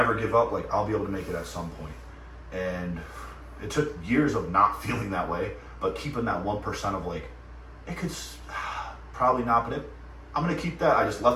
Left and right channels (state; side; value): identical; both; correlation 1.00